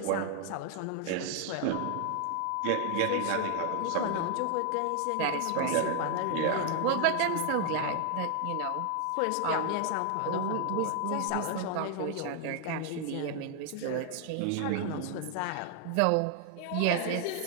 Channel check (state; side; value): different; both; correlation 0.00